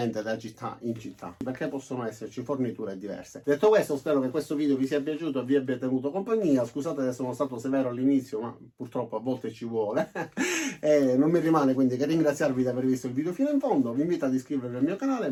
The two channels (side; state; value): both; identical; correlation 1.00